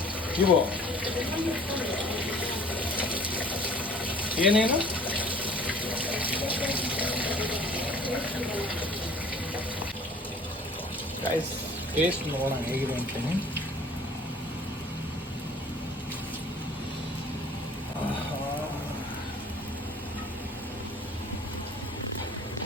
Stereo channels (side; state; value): both; normal; correlation 0.50